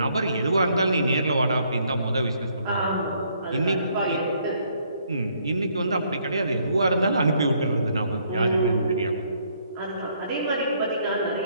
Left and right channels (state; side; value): inverted; both; correlation -0.68